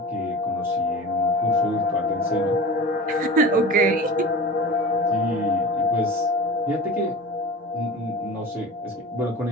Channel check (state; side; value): normal; both; correlation 0.33